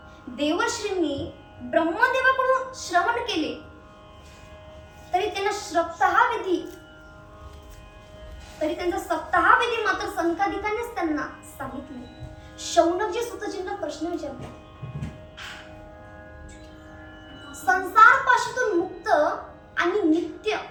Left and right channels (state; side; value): identical; both; correlation 1.00